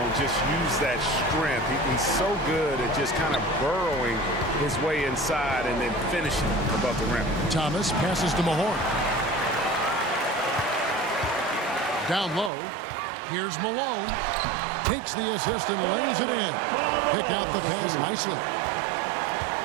just use that strength. He's so good at just kind of burrowing his way inside and then finishing above the rim. Thomas passes to Mahorn. Down low. Here's Malone. Takes the assist and lays it in. Picked out the pass nicely.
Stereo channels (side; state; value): left; drops out; at 12.5 s